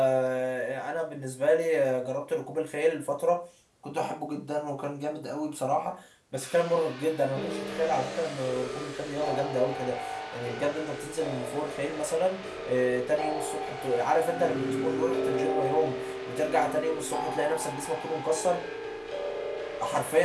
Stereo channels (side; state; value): both; identical; correlation 1.00